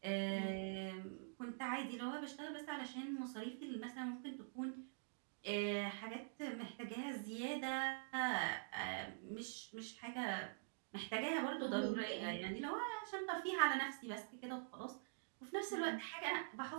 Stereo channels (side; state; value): left; silent; digital silence